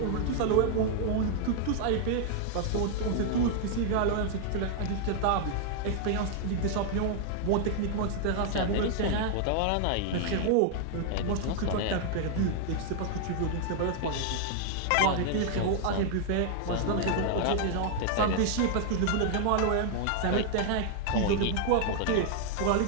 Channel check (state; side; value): different; both; correlation 0.00